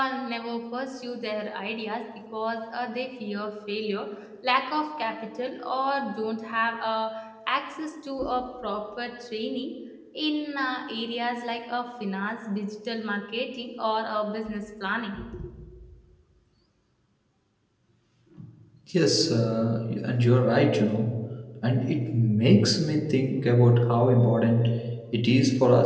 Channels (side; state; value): both; identical; correlation 1.00